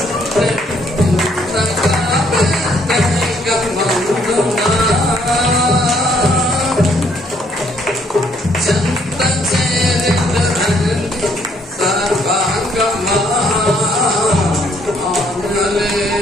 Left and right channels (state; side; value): normal; both; correlation 0.67